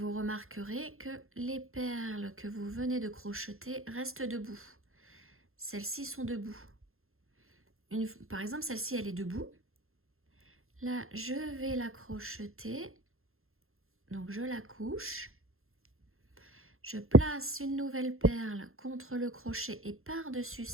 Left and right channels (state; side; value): late; left; 0.61 ms